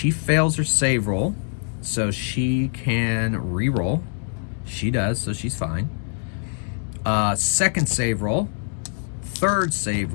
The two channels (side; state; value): right; silent; 56 dB below the other